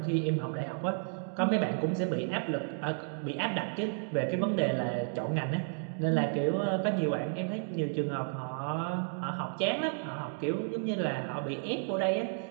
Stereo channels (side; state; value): left; silent; 56 dB below the other